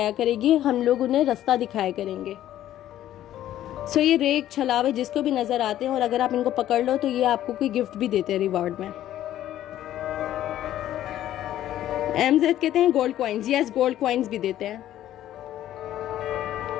करेगी, हम लोग उन्हें रास्ता दिखाया करेंगे। सो ये रेक छलावे जिसको भी नजर आते हैं और अगर आप इनको पकड़ लो तो ये आपको कोई गिफ्ट भी देते हैं रिवार्ड में। एमजेड कहते हैं gold coins, yes gold coins भी देते हैं।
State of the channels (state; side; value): quieter; right; 12.6 dB